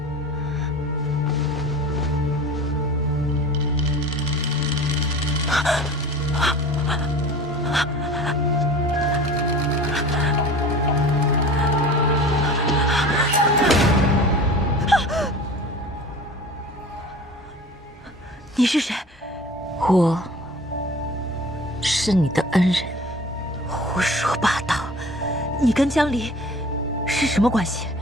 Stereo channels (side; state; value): both; normal; correlation 0.40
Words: 你是谁？我是你的恩人。胡说八道！你跟江离是什么关系？